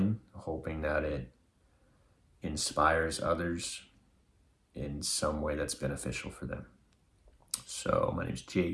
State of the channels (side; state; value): both; identical; correlation 1.00